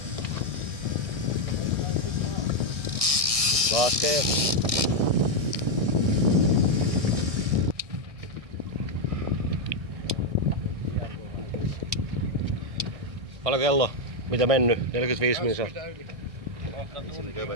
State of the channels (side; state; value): left; late; 1.6 ms